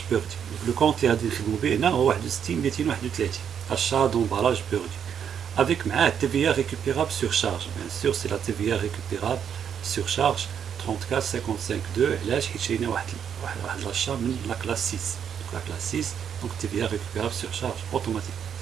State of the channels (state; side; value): quieter; left; 8.2 dB